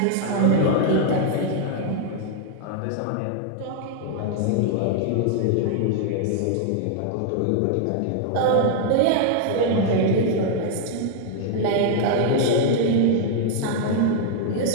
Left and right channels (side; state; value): both; different; correlation 0.00